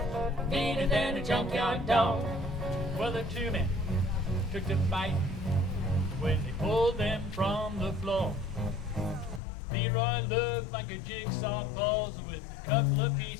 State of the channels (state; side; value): drops out; right; at 9.4 s